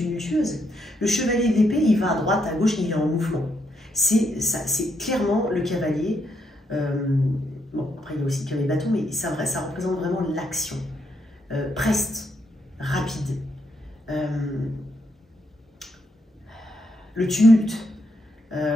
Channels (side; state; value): both; normal; correlation 0.77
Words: Le chevalier d'épée, il va à droite, à gauche, il est en mouvement. C'est clairement le cavalier. Bon, après, il y a aussi le cavalier bâton, mais ça représente vraiment l'action. Preste, rapide. Le tumulte.